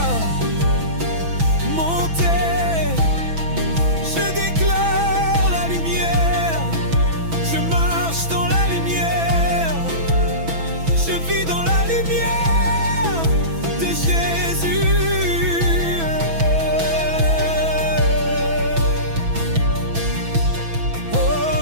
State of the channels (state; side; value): late; left; 6.1 ms